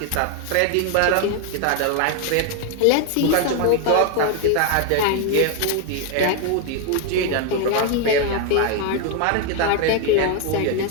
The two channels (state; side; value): different; both; correlation 0.01